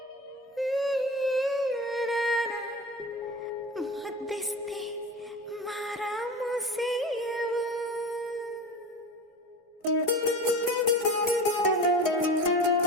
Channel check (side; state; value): both; normal; correlation 0.31